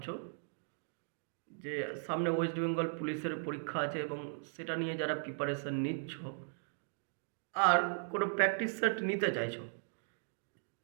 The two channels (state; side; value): silent; left; digital silence